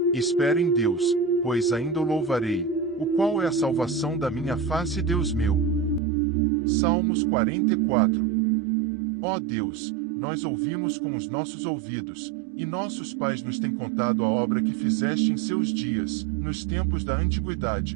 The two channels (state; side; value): drops out; left; at 6.0 s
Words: Espera em Deus, pois ainda o louvarei, o qual é a salvação da minha face, Deus meu. Salmos 44. Ó Deus, nós ouvimos com os nossos ouvidos, e nossos pais nos têm contado a obra que fizeste em seus dias, nos tempos da